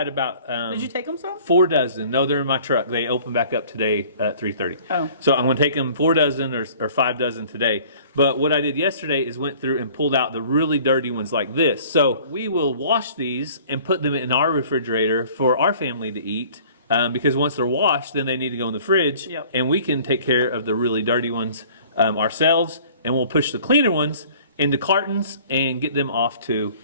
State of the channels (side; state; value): both; inverted; correlation -0.51